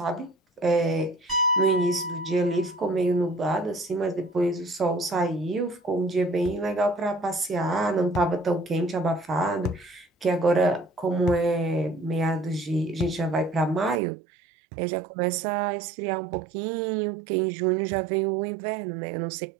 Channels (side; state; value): left; drops out; at 14.0 s